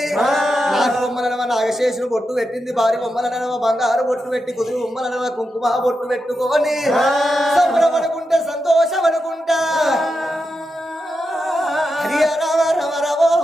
నాటి బొమ్మలనవ నాగశేషుని బొట్టు పెట్టింది భారీ బొమ్మలనవ బంగారు బొట్టు పెట్టి కుదురు బొమ్మలనవ కుంకుమ బొట్టు పెట్టుకొని సంబరపడుకుంటే సంతోషపడుకుంటా హరి రామ రమ రమో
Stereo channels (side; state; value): both; normal; correlation 0.88